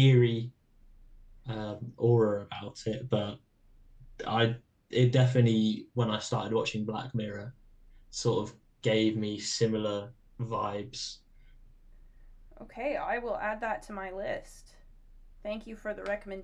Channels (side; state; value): both; identical; correlation 1.00